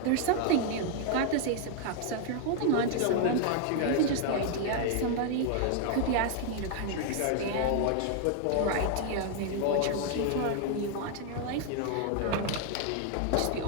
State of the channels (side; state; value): both; different; correlation 0.00